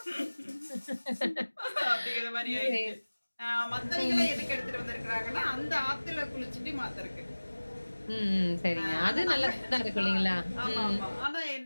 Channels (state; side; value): inverted; both; correlation -1.00